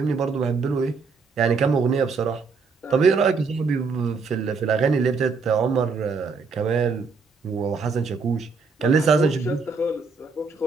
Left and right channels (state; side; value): quieter; left; 4.7 dB